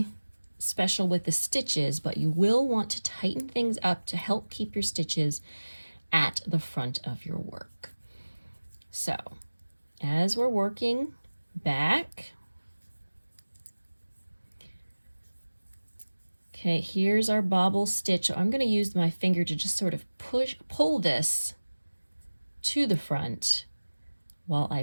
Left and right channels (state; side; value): inverted; both; correlation -1.00